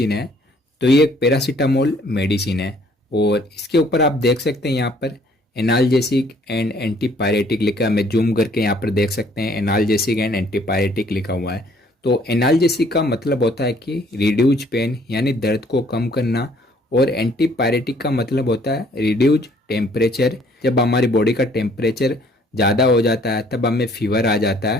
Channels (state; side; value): normal; both; correlation 0.61